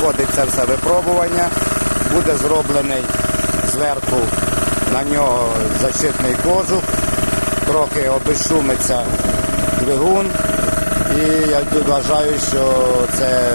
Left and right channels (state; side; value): inverted; both; correlation -1.00